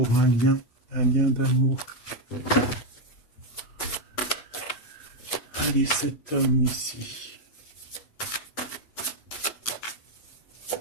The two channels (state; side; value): late; right; 8.2 ms